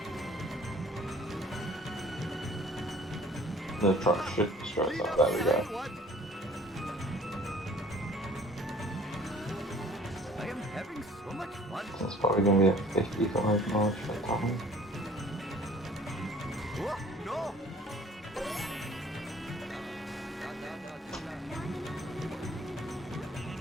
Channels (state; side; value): normal; both; correlation 0.53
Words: The truck should stress up. There we go. I am having so much fun. So it's probably gonna be a 55 miles per time. Oh, no!